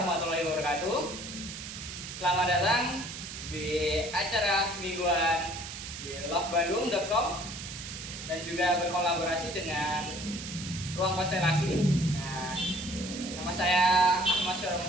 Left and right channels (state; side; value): noise; right; hiss, 9 dB below the sound